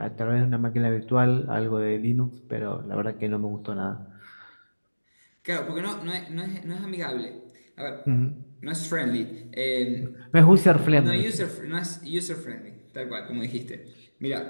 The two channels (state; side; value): inverted; both; correlation -1.00